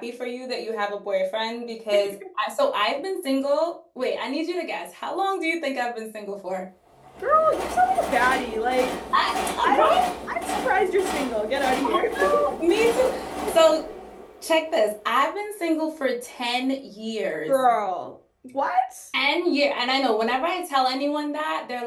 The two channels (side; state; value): both; identical; correlation 1.00